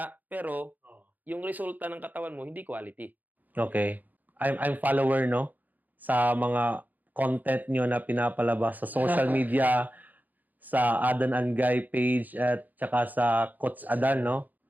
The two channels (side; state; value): left; late; 0.083 ms